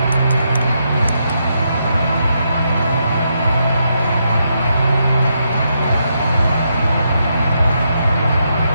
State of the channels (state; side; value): inverted; both; correlation -0.80